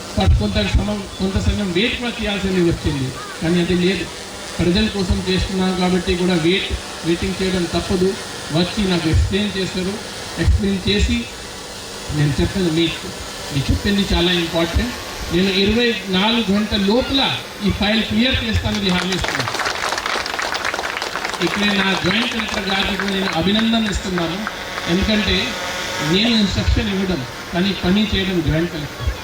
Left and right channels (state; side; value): identical; both; correlation 1.00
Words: కొంత సమయం వెయిట్ కూడా చేయాల్సింది వచ్చింది. కానీ అది లేదు, ప్రజల కోసం చేస్తున్నాను కాబట్టి కూడా వెయిటింగ్ చేయడం తప్పదు. వచ్చి నాకు ఎక్స్ప్లెయిన్ చేశారు. ఎక్స్ప్లెయిన్ చేసి నేను చెప్పేది మీరు చెప్పింది చాలా ఇంపార్టెంట్, నేను 24 గంటల లోపల ఈ ఫైల్ క్లియర్ చేస్తానని హామీ ఇస్తున్నాను. ఇక్కడ నా జాయింట్ కలెక్టర్ గారికి నేను అభినందన ఇస్తున్నాను. ఎందుకంటే నేను ఇన్స్ట్రక్షన్ ఇవ్వడం కానీ పని చేయడం జాయింట్ కలెక్టర్.